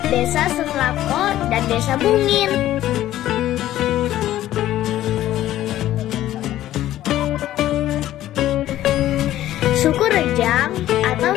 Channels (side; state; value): right; quieter; 13.6 dB